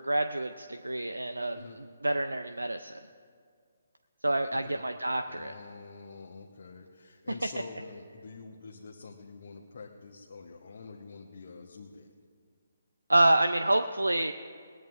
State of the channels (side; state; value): both; inverted; correlation -0.96